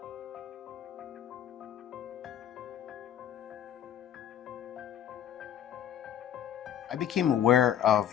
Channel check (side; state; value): right; quieter; 10.1 dB